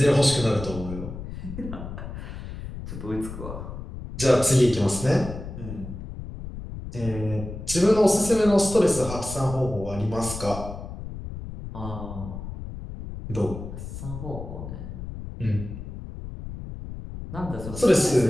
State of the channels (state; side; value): noise; left; rumble, 10 dB below the sound